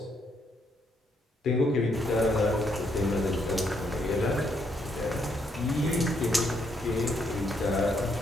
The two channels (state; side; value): normal; both; correlation 0.74